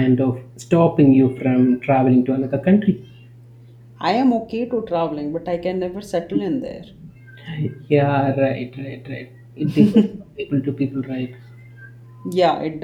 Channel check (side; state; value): both; identical; correlation 1.00